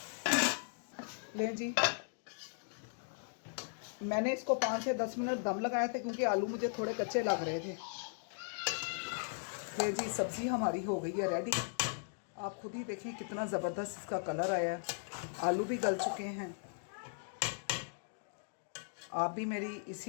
लें जी, मैंने इसको 5 से 10 मिनट दम लगाए थे क्योंकि आलू मुझे थोड़े कच्चे लग रहे थे। ले जी सब्ज़ी हमारी हो गई है रेडी। आप खुद ही देखें कितना ज़बरदस्त इसका कलर आया है, आलू भी गल चुके हैं। आप भी मेरी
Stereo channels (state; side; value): silent; right; digital silence